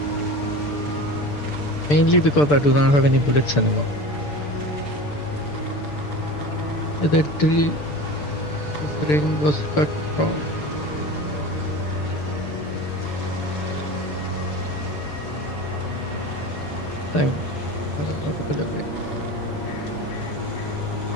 Mainly because I do not have any bullets anymore. The tree ring was cut from. Thank. I don't know to put away.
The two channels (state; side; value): late; right; 6.8 ms